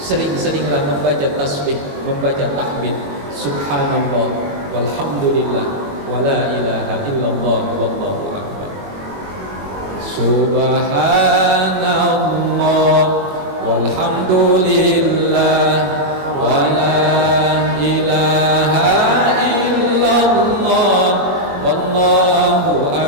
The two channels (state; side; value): late; left; 21 ms